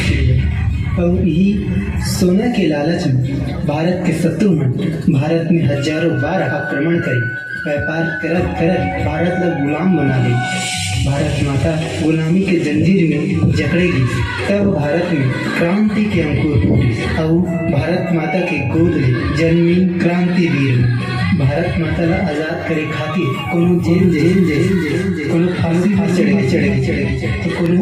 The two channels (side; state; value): both; identical; correlation 1.00